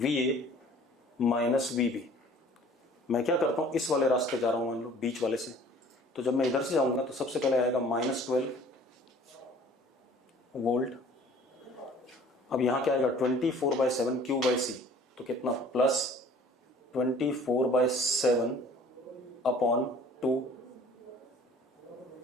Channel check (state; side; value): normal; both; correlation 0.51